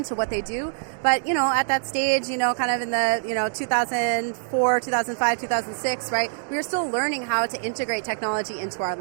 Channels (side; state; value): left; silent; digital silence